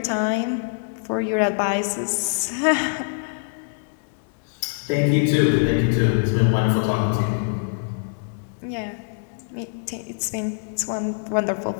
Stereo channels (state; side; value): silent; right; digital silence